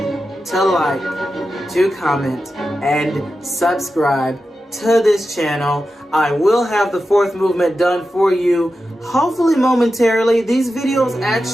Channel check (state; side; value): normal; both; correlation 0.91